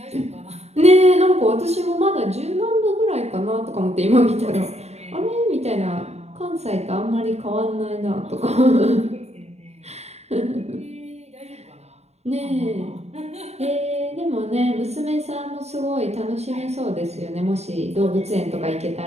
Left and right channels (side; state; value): left; late; 0.31 ms